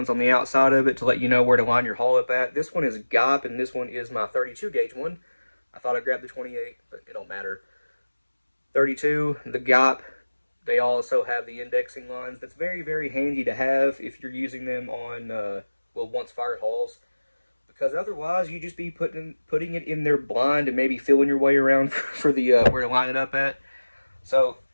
on the outside of it to let you know where to line your hull up at. This one is GAP and this one is my 32 gauge one. I thought I grabbed the 28, but it don't matter. 32, the GAP, they also have the indexing lines. That's very, very handy to have if you're using them on, once fired hulls. Because otherwise, you just be putting it in there blind and maybe feeling your way around for the where to line it up at. So,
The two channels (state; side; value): inverted; both; correlation -1.00